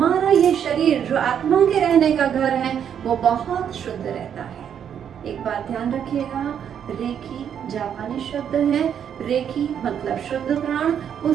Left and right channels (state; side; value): quieter; left; 8.6 dB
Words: ये शरीर जो आत्मा के रहने का घर है वो बहुत शुद्ध रहता है। एक बात ध्यान रखिएगा, रेकी जापानी शब्द है। रेकी मतलब शुद्ध प्राण,